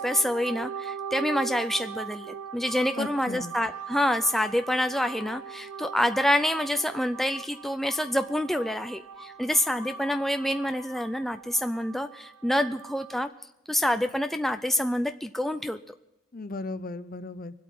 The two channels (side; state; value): both; normal; correlation 0.83